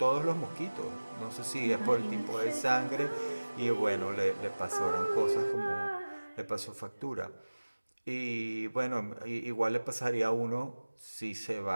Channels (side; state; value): both; inverted; correlation -1.00